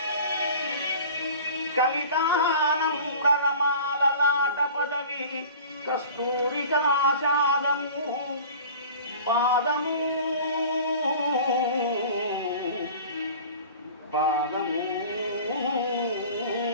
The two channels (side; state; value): both; inverted; correlation -0.41